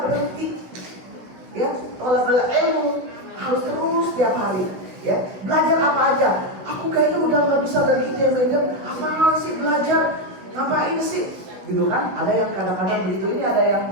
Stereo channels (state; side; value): late; left; 16 ms